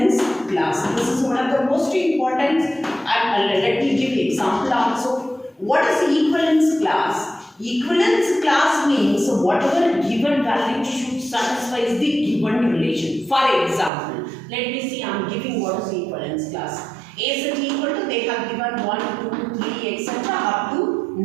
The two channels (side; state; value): left; drops out; at 13.9 s